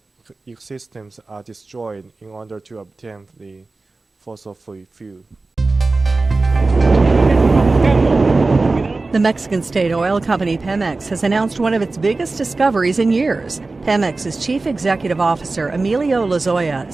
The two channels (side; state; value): left; quieter; 3.5 dB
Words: the systems are destroyed in order to obtain the fossil-free fuel. The Mexican state oil company Pemex has announced one of its biggest discoveries in years. Pemex's chief executive officer, Emilio Lozoya,